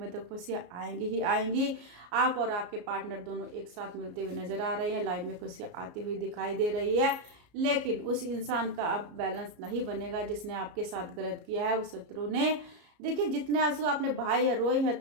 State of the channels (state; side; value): late; left; 34 ms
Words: तो खुशियाँ आएंगी ही आएंगी। आप और आपके पार्टनर दोनों एक साथ मिलते हुए नजर आ रहे हैं, लाइफ में खुशियाँ आती हुई दिखाई दे रही है। लेकिन उस इंसान का अब बैलेंस नहीं बनेगा जिसने आपके साथ गलत किया है, उस शत्रु ने। देखिए, जितने आंसू आपने बहाए है, रोए है,